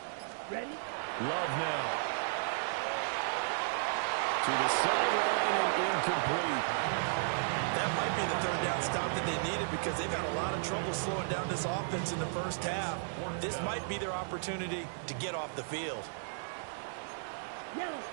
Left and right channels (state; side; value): silent; left; digital silence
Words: Ready? Love now. To the sideline and incomplete. That might be the third down stop that they needed because they've had a lot of trouble slowing down this offense in the first half. This might be their opportunity to get off the field. Yellow,